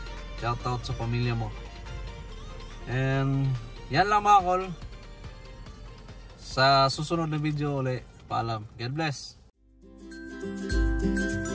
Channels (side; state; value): both; identical; correlation 1.00